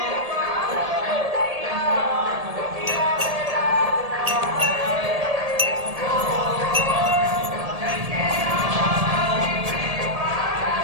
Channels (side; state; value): left; late; 1.7 ms